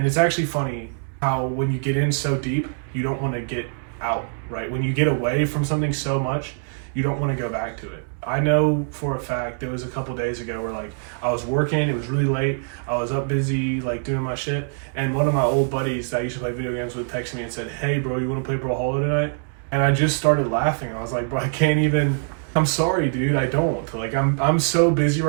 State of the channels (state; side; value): silent; left; 63 dB below the other